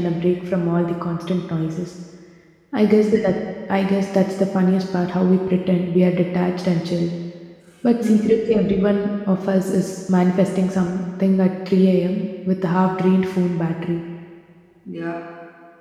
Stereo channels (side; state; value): both; identical; correlation 1.00